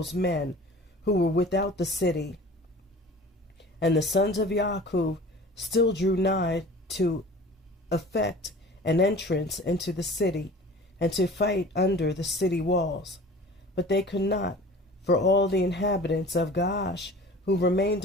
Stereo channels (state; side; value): normal; both; correlation 0.42